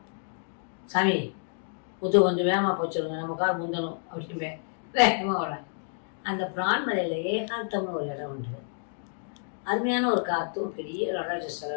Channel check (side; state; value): right; silent; digital silence